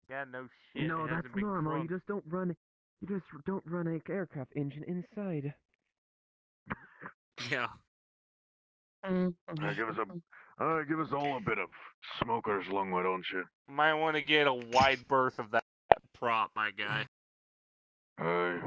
Yeah, no shit. No, it that's hasn't been normal. crunk. You just don't run an aircraft engine inside. Yeah. Give us all a bit of smoker's lung, why don't you? Might want to get a wide berth of that prop, my guy.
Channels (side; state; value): both; identical; correlation 1.00